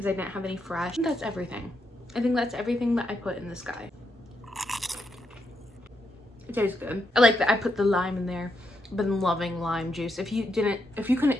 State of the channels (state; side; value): normal; both; correlation 0.81